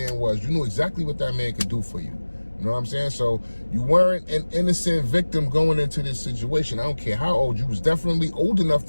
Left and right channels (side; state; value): both; inverted; correlation -1.00